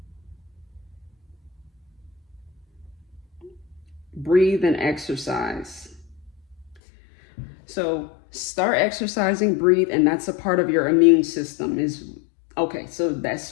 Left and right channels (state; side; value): drops out; right; at 6.8 s